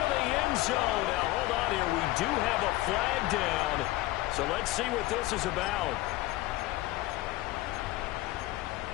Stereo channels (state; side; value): quieter; right; 18.1 dB